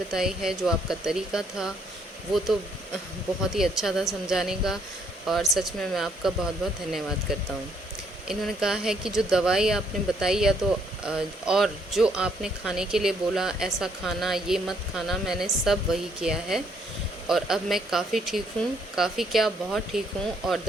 है, जो आपका तरीका था वो तो बहुत ही अच्छा था समझाने का, और सच में मैं आपका बहुत बहुत धन्यवाद करता हूँ। इन्होंने कहा है कि जो दवाई आपने बताई या तो और जो आपने खाने के लिए बोला, ऐसा खाना, ये मत खाना, मैंने सब वही किया है और अब मैं काफ़ी ठीक हूँ, काफ़ी क्या बहुत ठीक हूँ और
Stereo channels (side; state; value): both; normal; correlation 0.69